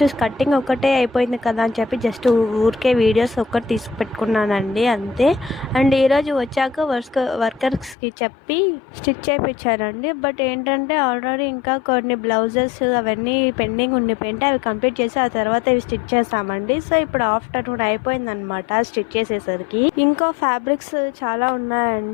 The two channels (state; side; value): drops out; right; at 8.0 s